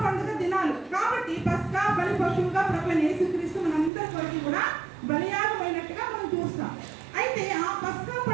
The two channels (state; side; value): drops out; left; at 3.9 s